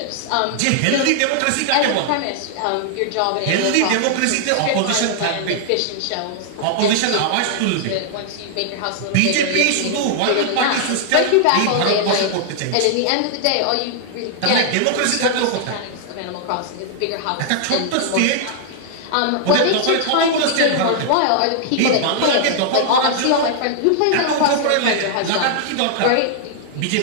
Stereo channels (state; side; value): different; both; correlation -0.01